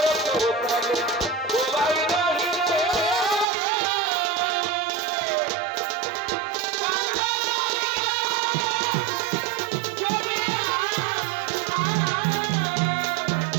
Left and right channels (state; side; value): drops out; left; at 3.5 s